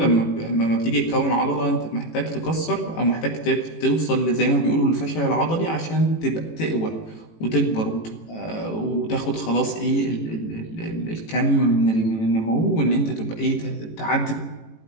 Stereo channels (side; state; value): right; late; 18 ms